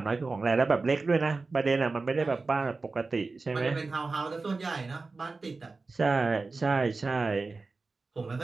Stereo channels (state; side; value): quieter; left; 3.8 dB